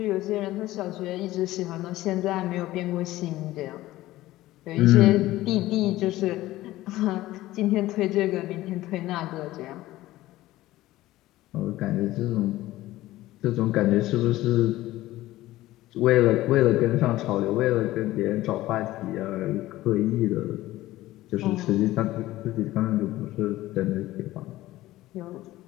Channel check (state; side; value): quieter; right; 16.4 dB